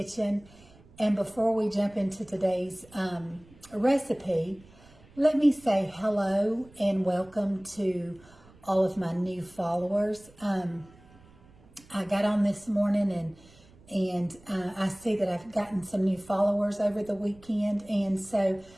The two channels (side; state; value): right; noise; rumble, 26 dB below the sound